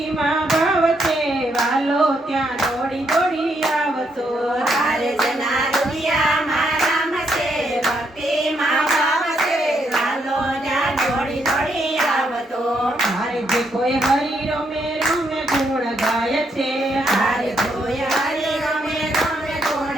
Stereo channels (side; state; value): both; normal; correlation 0.76